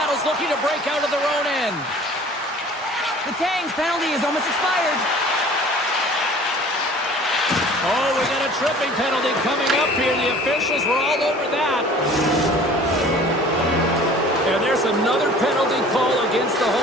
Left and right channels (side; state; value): both; normal; correlation 0.47